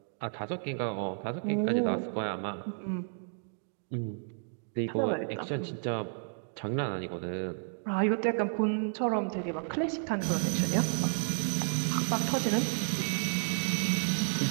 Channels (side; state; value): left; silent; digital silence